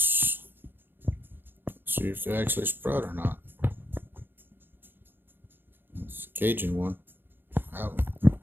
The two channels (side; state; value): left; late; 0.099 ms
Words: See if they actually sprout or not. It's a Cajun one. Out.